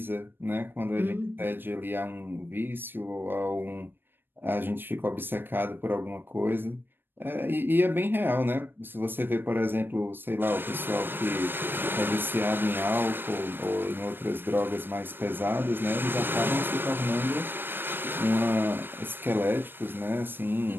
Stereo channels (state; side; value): late; left; 0.097 ms